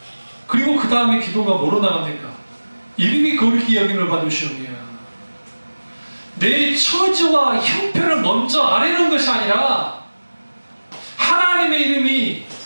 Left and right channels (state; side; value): inverted; both; correlation -1.00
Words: 그리고 그 다음에 기도가 뭐로 나갑니까? 이름이 거룩히 여김을 받으시오며, 내 처지와 형편을 먼저 아뢰는 것이 아니라 하나님의 이름이,